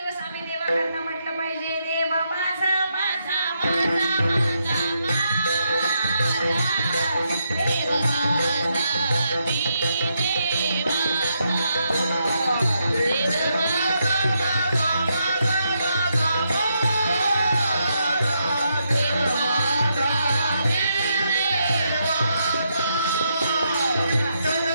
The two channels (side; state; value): both; inverted; correlation -0.80